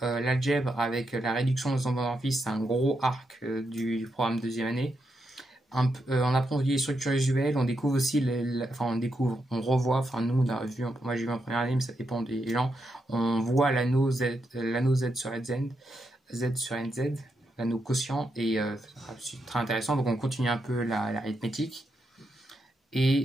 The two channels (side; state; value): both; normal; correlation 0.83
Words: l'algèbre avec la réduction des homomorphismes, c'est un gros arc du programme deuxième année. On approfondit les structures usuelles, on découvre aussi, on revoit, enfin nous on a vu, moi j'ai vu en première année mais ça dépend des gens, on voit l'anneau Z sur NZ, l'anneau quotient, et c'est très intéressant, donc on continue un peu l'arithmétique.